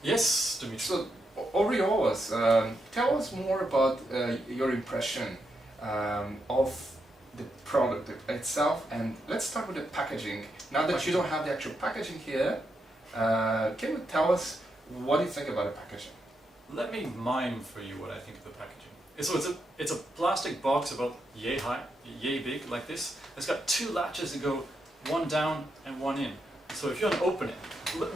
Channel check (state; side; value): normal; both; correlation 0.82